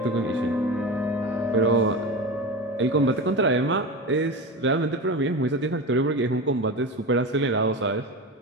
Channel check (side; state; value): both; normal; correlation 0.25